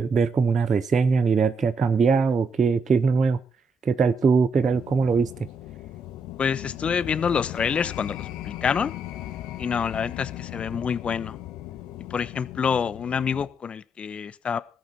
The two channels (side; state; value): both; normal; correlation 0.76